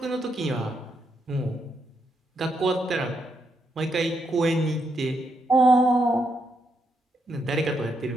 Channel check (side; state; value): both; normal; correlation 0.79